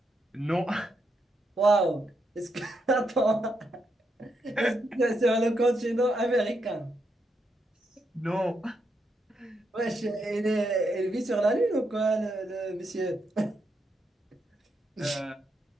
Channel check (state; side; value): normal; both; correlation 0.81